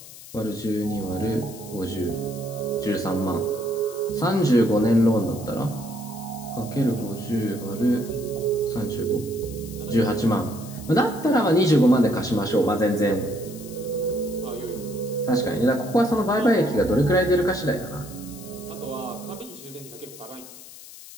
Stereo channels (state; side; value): noise; left; hiss, 17 dB below the sound